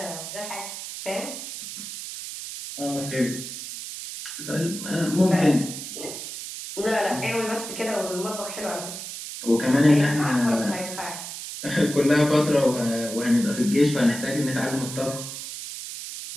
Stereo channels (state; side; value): noise; right; hiss, 9 dB below the sound